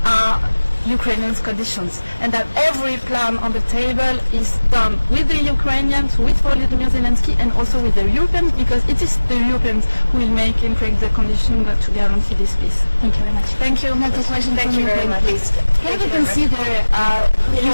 are Ukrainians' conditions, and that every plan on the table is done with the Ukrainians, with Volodymyr Zelenskyy, and also with the Europeans, because it is the Europeans who will make and create the conditions to guarantee this peace. Thank you very much. Thank you. Another question Thank from you very Ukraine, much. please.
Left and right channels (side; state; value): both; inverted; correlation -1.00